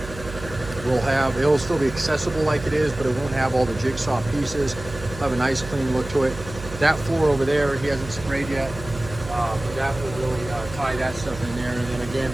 it'll still be accessible like it is, but it won't have all the jigsaw pieces. It'll have a nice clean look to it. That floor over there, he hasn't sprayed yet, but that will really tie that stuff in there. And then again,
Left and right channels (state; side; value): noise; right; hum, 13 dB below the sound